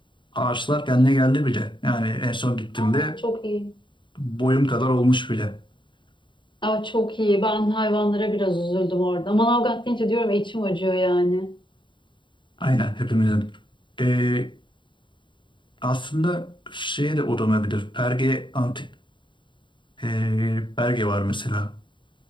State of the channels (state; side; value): late; right; 0.23 ms